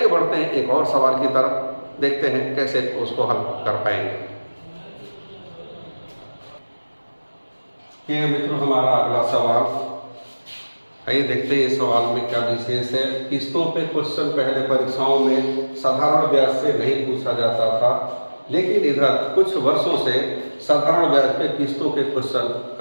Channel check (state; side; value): inverted; both; correlation -1.00